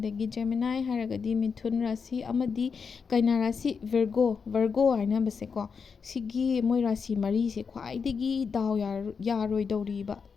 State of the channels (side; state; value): right; quieter; 5.7 dB